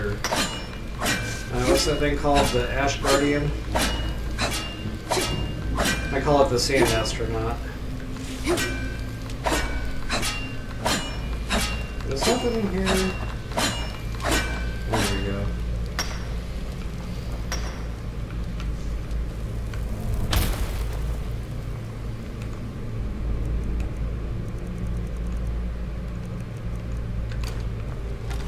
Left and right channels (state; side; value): identical; both; correlation 1.00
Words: What's that thing called? The Ash Guardian? I call it the Sand Astronaut. There's something in here. There we go.